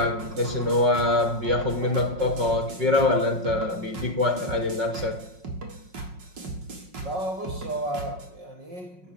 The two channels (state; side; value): late; left; 5.5 ms